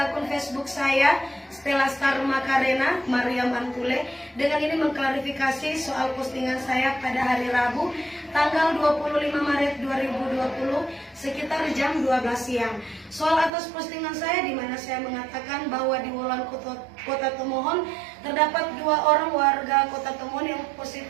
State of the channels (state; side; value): drops out; left; at 13.5 s